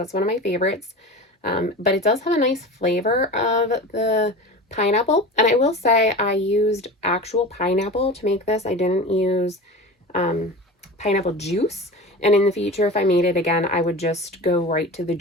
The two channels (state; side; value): normal; both; correlation 0.32